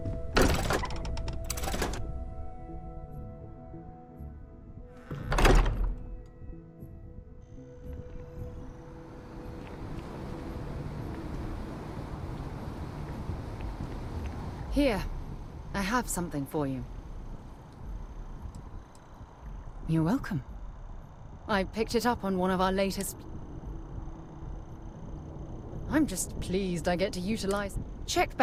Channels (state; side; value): identical; both; correlation 1.00